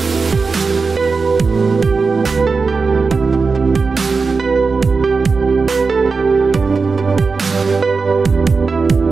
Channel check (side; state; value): left; quieter; 4.5 dB